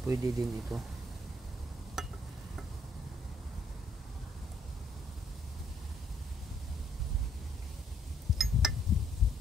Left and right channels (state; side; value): normal; both; correlation 0.69